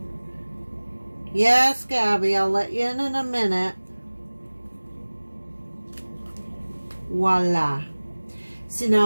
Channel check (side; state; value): both; inverted; correlation -1.00